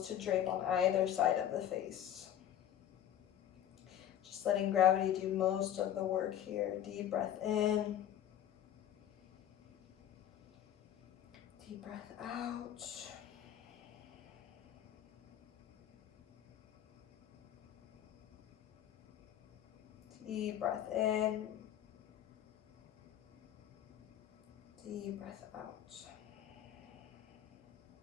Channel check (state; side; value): quieter; right; 10.9 dB